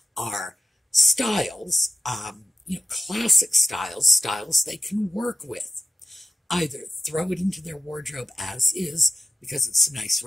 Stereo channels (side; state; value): both; normal; correlation 0.92